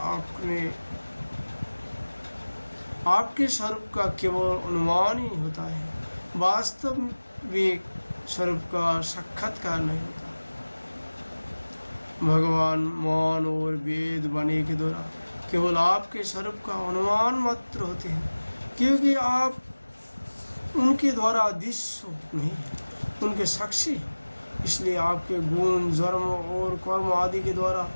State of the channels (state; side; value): inverted; both; correlation -1.00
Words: आपके स्वरूप का केवल अनुमान ही होता है, वास्तविक स्वरूप का साक्षात्कार नहीं होता। भगवान मौन और वेद वाणी के द्वारा केवल आपके स्वरूप का अनुमान मात्र होते हैं, क्योंकि आप उनके द्वारा दृश्य नहीं, उनके साक्षी हैं। इसलिए आपके गुण जन्म और कर्म आदि के द्वारा